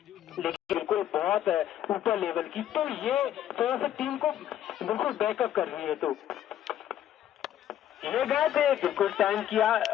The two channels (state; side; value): quieter; right; 11.1 dB